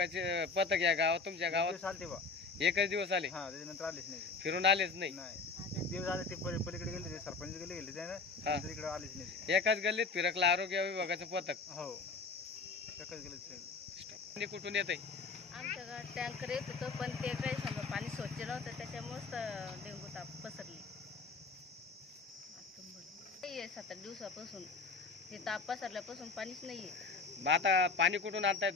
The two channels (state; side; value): quieter; right; 4.4 dB